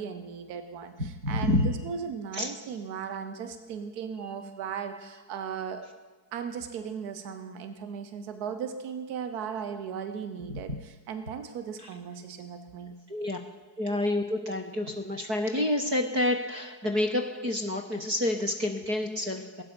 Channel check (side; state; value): left; late; 4.6 ms